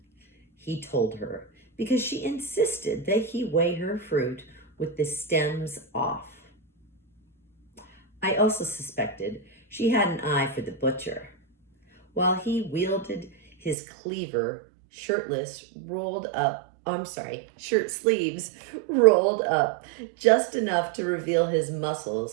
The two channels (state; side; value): drops out; left; at 13.8 s